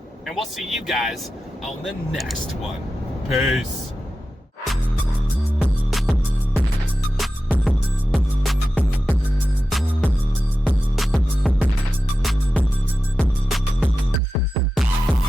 and we'll see you guys on the next one. Peace.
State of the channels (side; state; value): both; normal; correlation 0.92